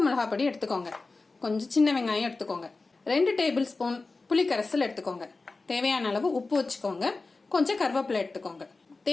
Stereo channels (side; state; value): right; quieter; 3.7 dB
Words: மிளகாய் பொடி எடுத்துக்கோங்க. கொஞ்சம் சின்ன வெங்காயம் எடுத்துக்கோங்க. 2 டேபிள் ஸ்பூன் புளிக்கரைசல் எடுத்துக்கோங்க. தேவையான அளவு உப்பு வச்சுக்கோங்க. கொஞ்சம் கருவேப்பிலை எடுத்துக்கோங்க.